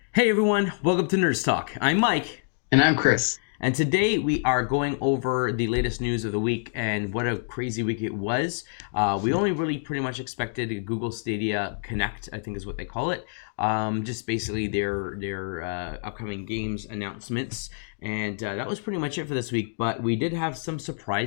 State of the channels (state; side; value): silent; right; digital silence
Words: Hey everyone, welcome to Nerds Talk. I'm Mike, And I'm Chris. and today we are going over the latest news of the week and what a crazy week it was. We only really pretty much expected a Google Stadia Connect, I think is what they call it. Just basically their upcoming games announcements, and that was pretty much it for this week. But we did have some